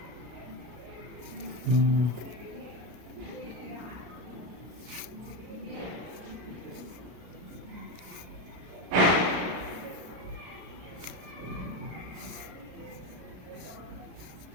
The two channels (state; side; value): late; left; 33 ms